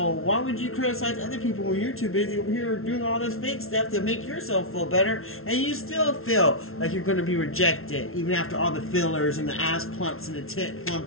why would you criticize other people when you're too busy over here doing all this fake stuff to make yourself feel better, and you still feel like you're going to be rejected, even after all the fillers and the ass plumps and the tit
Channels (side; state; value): right; late; 0.62 ms